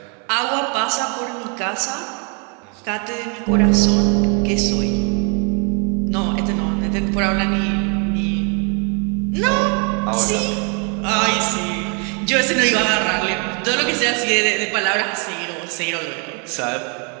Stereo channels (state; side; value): quieter; left; 36.4 dB